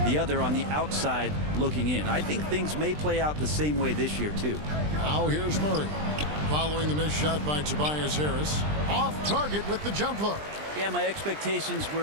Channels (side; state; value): left; late; 20 ms